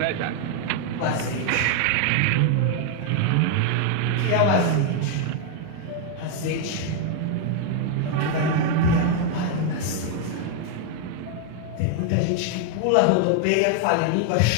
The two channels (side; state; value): both; different; correlation 0.00